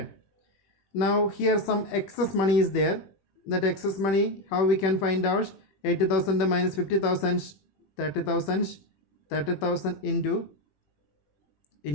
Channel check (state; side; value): late; right; 21 ms